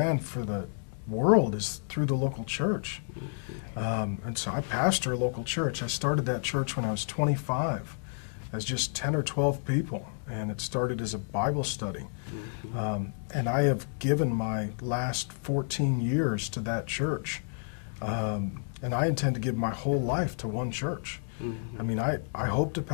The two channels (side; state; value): right; silent; digital silence